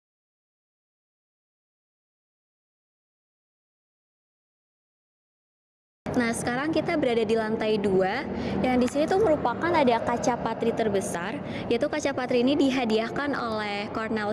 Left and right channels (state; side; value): identical; both; correlation 1.00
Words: Nah, sekarang kita berada di lantai 2, yang di sini tuh merupakan ada kaca patri terbesar, yaitu kaca patri ini dihadiahkan oleh